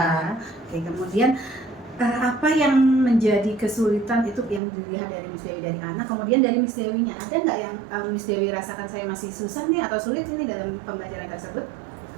Oke, kemudian apa yang menjadi kesulitan itu yang dilihat dari Miss Dewi dari anak, kemudian dari Miss Dewinya ada nggak yang Miss Dewi rasakan saya masih susah nih atau sulit ini dalam pembelajaran tersebut?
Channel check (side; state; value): left; drops out; at 4.6 s